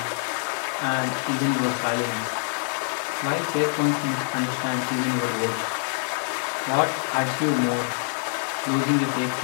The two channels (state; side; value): silent; right; 61 dB below the other